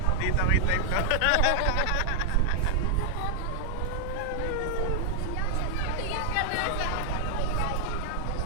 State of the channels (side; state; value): both; different; correlation 0.00